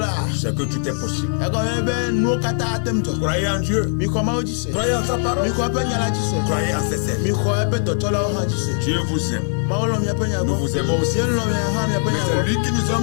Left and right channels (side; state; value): right; silent; 59 dB below the other